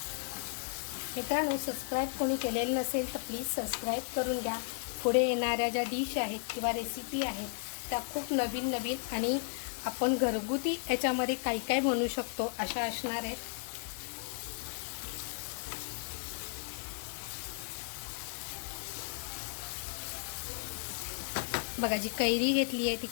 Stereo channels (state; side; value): silent; right; digital silence